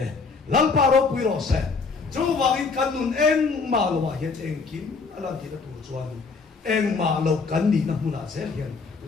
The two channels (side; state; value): right; quieter; 4.6 dB